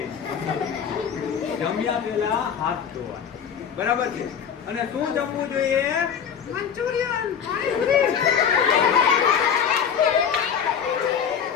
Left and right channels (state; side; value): quieter; right; 7.7 dB